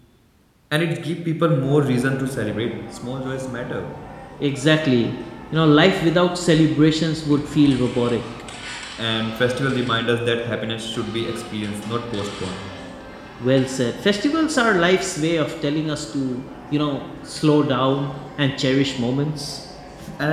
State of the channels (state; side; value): identical; both; correlation 1.00